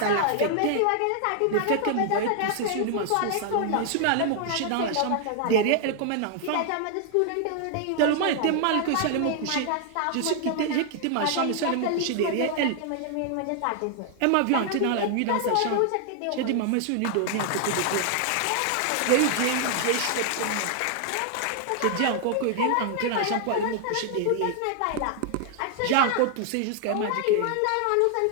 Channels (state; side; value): different; both; correlation 0.00